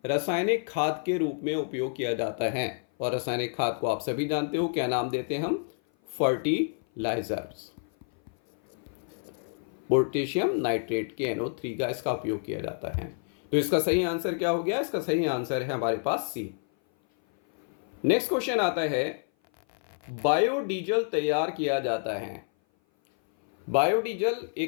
रासायनिक खाद के रूप में उपयोग किया जाता है। और रासायनिक खाद को आप सभी जानते हो, क्या नाम देते हैं हम? फर्टिलाइजर्स। पोटेशियम नाइट्रेट के NO3 का इसका उपयोग किया जाता है। तो इसका सही आंसर क्या हो गया? इसका सही आंसर है हमारे पास सी। नेक्स्ट क्वेश्चन आता है बायोडीजल तैयार किया जाता है। बायोडीजल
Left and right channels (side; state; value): right; silent; 56 dB below the other